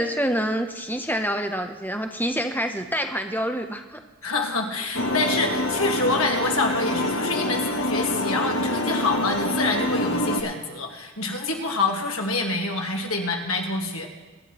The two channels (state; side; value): normal; both; correlation 0.18